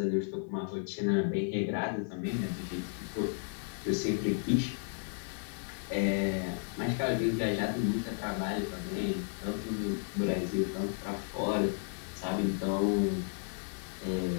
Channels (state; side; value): silent; right; 55 dB below the other